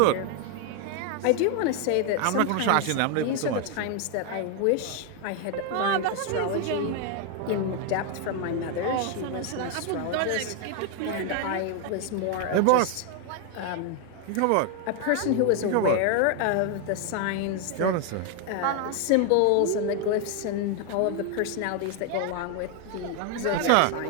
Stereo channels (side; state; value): both; different; correlation 0.01